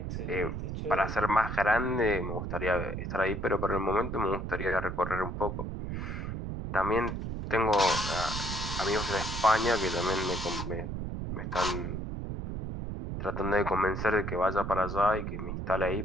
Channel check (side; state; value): right; noise; rumble, 4 dB below the sound